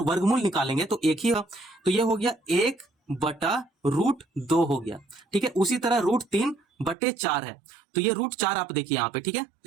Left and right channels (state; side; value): drops out; left; at 7.0 s